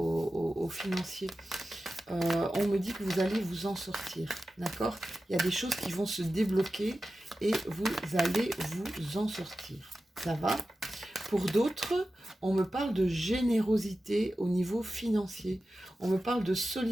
financiers. On me dit que vous allez vous en sortir. D'accord? Il y a des choses qui vont se débloquer et vous allez vous en sortir. Ça va? Pour d'autres, on me parle de générosité au niveau financier. On me parle de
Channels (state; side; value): normal; both; correlation 0.93